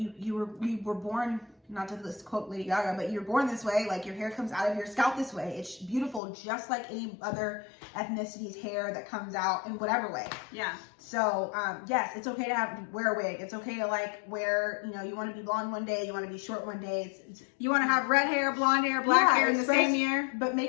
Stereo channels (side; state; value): right; drops out; at 6.2 s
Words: were born, not to this quote Lady Gaga, but you're born this way. Like your hair comes out of your scalp this way. It's beautiful, just like any other ethnicity's hair that comes out in whatever way. Yeah. So yes, it's okay to wear a wig. It's okay to like wear, you know, you want to be blonde one day, you want to be short one day. You want to have red hair, blonde hair, black hair in the same year. But